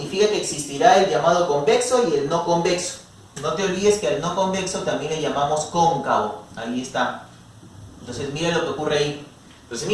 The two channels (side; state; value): both; identical; correlation 1.00